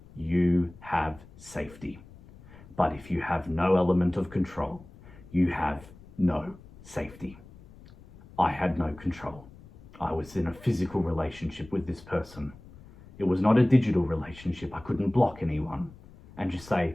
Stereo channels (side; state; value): left; noise; rumble, 21 dB below the sound